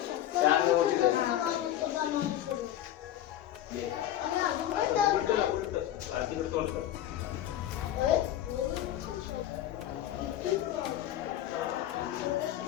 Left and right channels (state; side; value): quieter; right; 12.3 dB